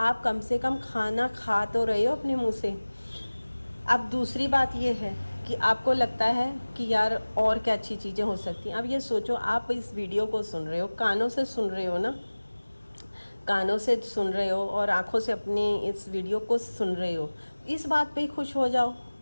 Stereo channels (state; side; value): inverted; both; correlation -1.00